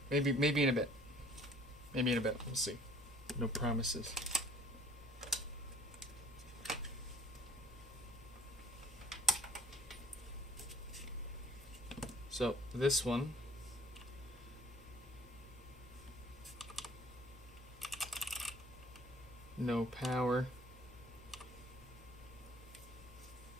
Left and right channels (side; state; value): both; normal; correlation 0.54